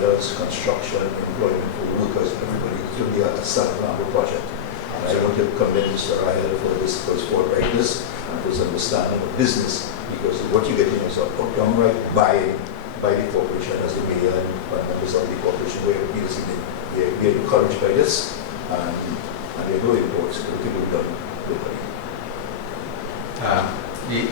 construction, employment for workers, everybody. It will be a San Fernando project. And I want to commend Mr. Rahael for his forthrightness and for his understanding of business, because what you're getting is a downright buy-in by the corporation as the mayor and members of the corporation. We are encouraged by this, and there are no imports. Everything will be done locally.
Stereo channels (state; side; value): quieter; right; 8.9 dB